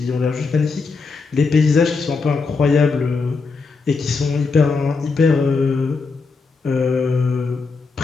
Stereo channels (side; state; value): right; quieter; 4.4 dB